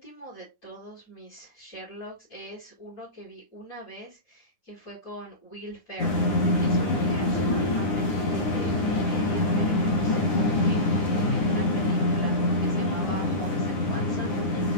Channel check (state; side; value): late; right; 9.8 ms